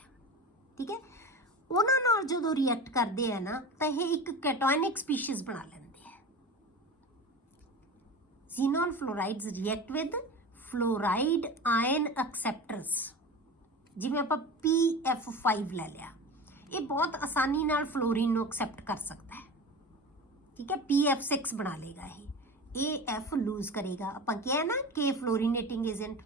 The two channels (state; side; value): normal; both; correlation 0.30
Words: ਠੀਕ ਹੈ। ਉਹਨਾਂ ਨਾਲ ਜਦੋਂ ਰਿਐਕਟ ਕਰਦੇ ਆ ਨਾ, ਤਾਂ ਇਹ ਇੱਕ ਕੈਟਾਇਨਿਕ ਸਪੀਸ਼ੀਜ਼ ਬਣਾ ਲੈਂਦੇ ਆ। ਜ਼ੀਨੋਨ ਫਲੋਰਾਈਡਸ ਰਿਐਕਟ ਵਿਦ ਫਲੋਰਾਈਡ ਆਇਨ ਐਕਸੈਪਟਰਸ, ਜਿਵੇਂ ਆਪਾਂ PF5 ਲੈ ਲਿਆ, ਇਹ ਬਹੁਤ ਆਸਾਨੀ ਨਾਲ ਫਲੋਰੀਨ ਨੂੰ ਐਕਸੈਪਟ ਕਰ ਸਕਦਾ ਹੈ। ਠੀਕ ਹੈ, PF6 ਬਣਾ ਲੇਗਾ, ਇਹ AF ਲੂਜ਼ ਕਰੇਗਾ। ਆਪਾਂ ਕਿਹਾ ਨਾ ਕਿ ਫਲੋਰੀਨੇਟਿੰਗ ਏਜੰਟ